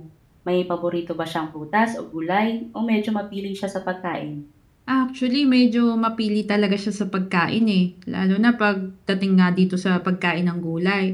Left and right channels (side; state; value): both; identical; correlation 1.00